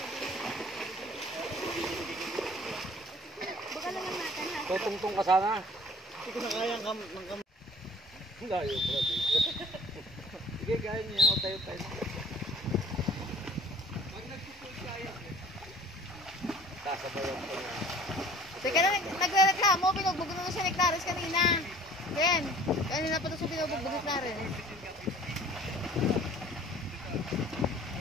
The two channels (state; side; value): normal; both; correlation 0.50